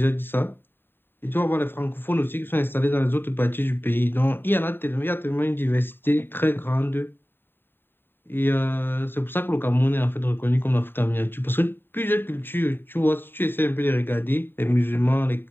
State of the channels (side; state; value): right; late; 0.099 ms